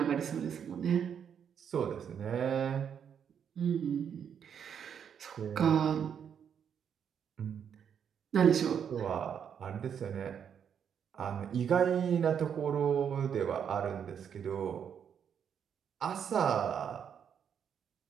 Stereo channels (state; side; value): quieter; left; 8.0 dB